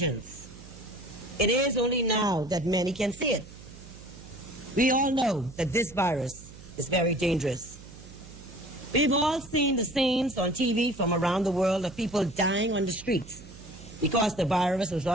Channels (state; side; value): noise; right; hum, 18 dB below the sound